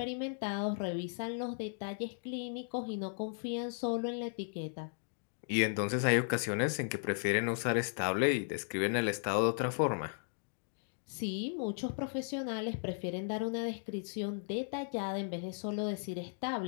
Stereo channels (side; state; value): right; silent; digital silence